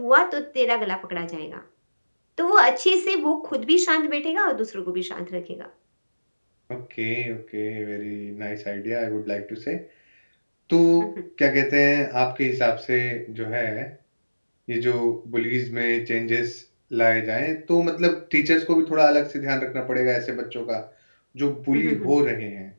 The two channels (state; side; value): inverted; both; correlation -1.00